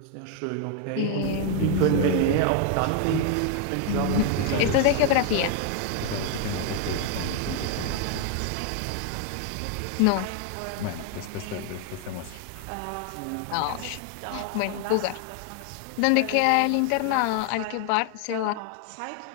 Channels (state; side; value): different; both; correlation 0.01